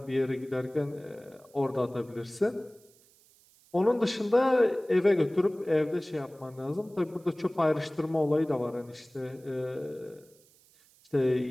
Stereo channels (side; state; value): right; noise; hiss, 29 dB below the sound